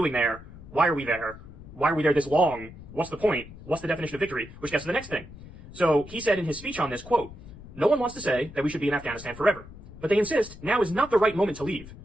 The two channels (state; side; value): noise; left; rumble, 16 dB below the sound